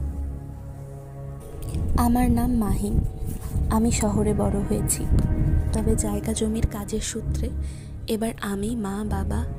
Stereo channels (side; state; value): both; identical; correlation 1.00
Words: আমার নাম মাহিম। আমি শহরে বড় হয়েছি, তবে জায়গা জমির কাজের সূত্রে এবার আমি, মা, বাবা